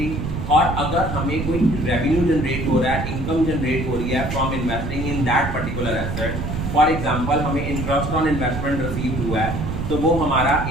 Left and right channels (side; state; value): right; noise; rumble, 4 dB below the sound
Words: और अगर हमें कोई रेवेन्यू जनरेट हो रहा है, इनकम जनरेट हो रही है from investing in that particular asset, for example हमें इंटरेस्ट ऑन इन्वेस्टमेंट रिसीव हुआ है तो वो हमारा